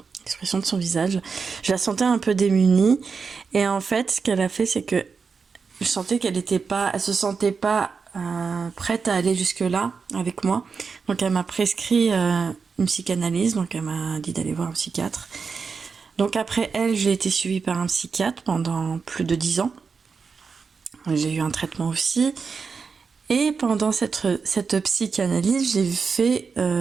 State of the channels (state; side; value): quieter; left; 5.3 dB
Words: de son visage. Je la sentais un peu démunie et en fait ce qu'elle a fait c'est que je sentais elle se sentait pas prête à aller jusque là avec moi, donc elle m'a prescrit une psychanalyse, donc elle m'a dit d'aller voir un psychiatre. Donc après elle, j'ai été suivie par un psychiatre pendant plus de 10 ans. J'ai eu un traitement aussi. Et pendant cette psychanalyse, j'ai fait